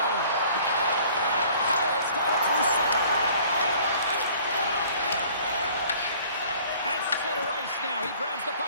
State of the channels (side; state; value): both; inverted; correlation -0.53